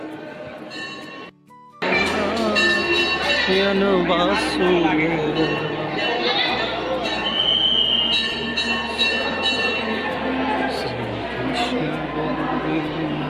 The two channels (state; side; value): identical; both; correlation 1.00